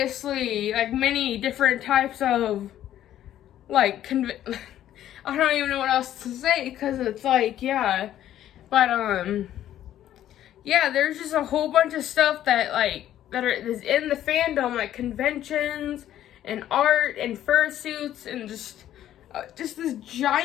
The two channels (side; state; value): right; quieter; 12.0 dB